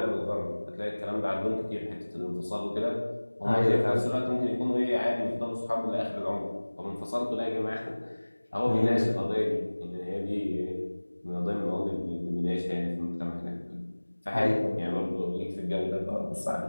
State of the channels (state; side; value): inverted; both; correlation -1.00